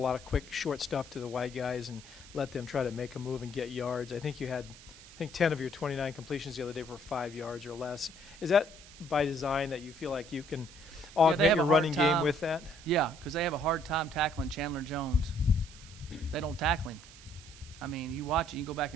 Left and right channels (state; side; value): noise; right; hiss, 19 dB below the sound